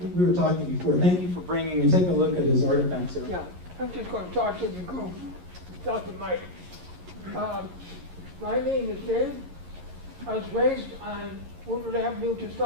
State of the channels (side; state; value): left; late; 11 ms